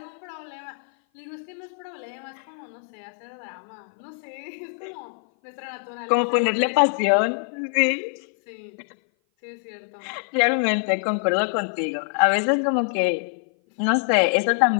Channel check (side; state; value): right; silent; 57 dB below the other